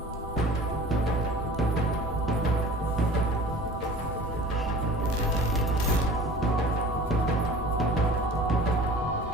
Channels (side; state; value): both; normal; correlation 0.43